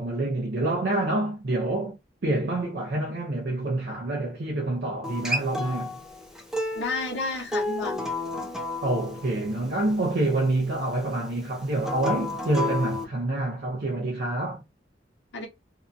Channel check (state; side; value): normal; both; correlation 0.53